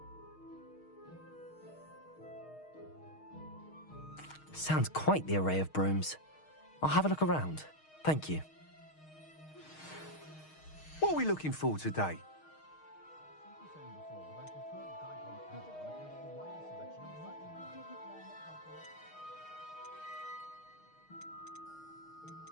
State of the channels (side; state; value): right; late; 6.4 ms